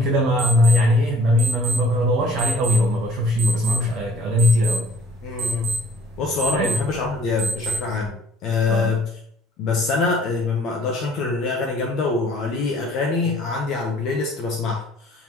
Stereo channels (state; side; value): normal; both; correlation 0.55